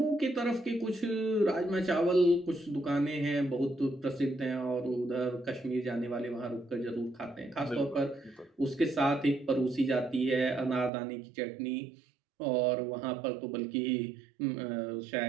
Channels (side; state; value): left; drops out; at 10.9 s